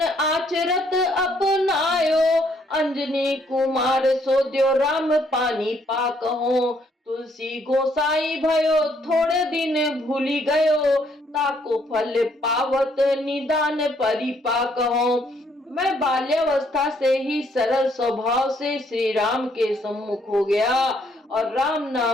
आचरत अपनायो, अंजनी कुमार सोद्यो राम पानी पाक हो। तुलसी गोसाई भयो थोड़े दिन भूली गयो, ताको फल पावत निदान परिपाक हो। मैं बाल्यावस्था से ही सरल स्वभाव से श्री राम के सम्मुख हो गया और राम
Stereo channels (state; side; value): normal; both; correlation 0.69